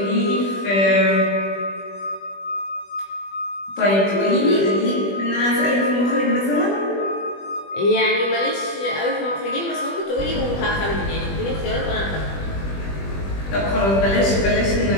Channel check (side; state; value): right; late; 20 ms